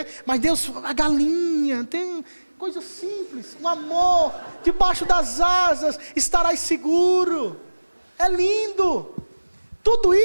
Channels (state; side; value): inverted; both; correlation -1.00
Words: Mas Deus, a galinha, tem coisa simples. O amor, debaixo das asas, estarás seguro. É lindo. Tudo